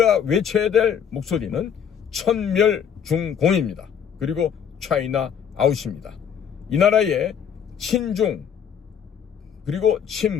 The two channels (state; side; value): quieter; right; 8.0 dB